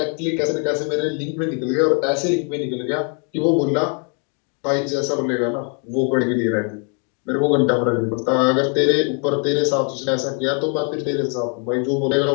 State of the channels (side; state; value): right; quieter; 39.3 dB